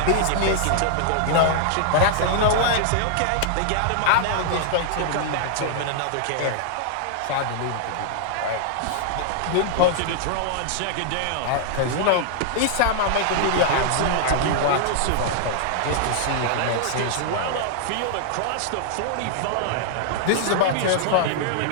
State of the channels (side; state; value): both; different; correlation -0.01